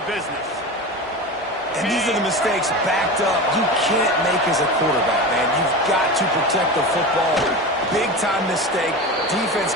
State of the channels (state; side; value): normal; both; correlation 0.27